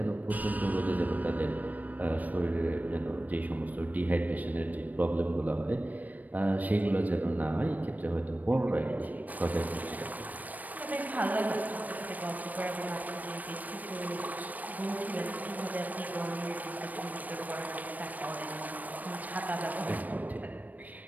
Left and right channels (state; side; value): late; left; 0.080 ms